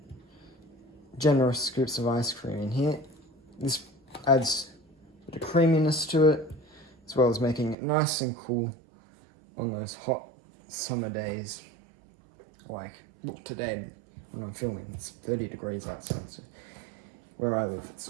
generous scoops of ice cream in here. This adds a bit of creaminess to it, as well as making it nice and cool on those hot summer days. Like, look, today when I'm filming, it's 30 degrees outside, so where I live,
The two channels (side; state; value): left; drops out; at 7.8 s